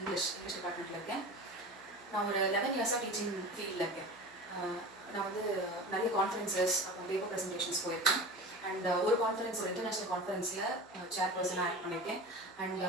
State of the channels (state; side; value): noise; right; hum, 29 dB below the sound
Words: டிபார்ட்மெண்ட்டில் இருக்கேன். நான் ஒரு 11 இயர்ஸாக டீச்சிங் ஃபீல்டில் இருக்கேன். நான் வந்து நிறைய கான்ஃபரன்சஸ் அப்புறம் பேப்பர் ப்ரெசன்டேஷன்ஸ் போயிருக்கேன். அண்ட் ஒரு கான்ஃபரன்ஸ், ஒரு இன்டர்நேஷ்னல் கான்ஃபரன்ஸில் சேர்பர்சனாக ஆக்ட் பண்ணியிருக்கேன். அண்ட்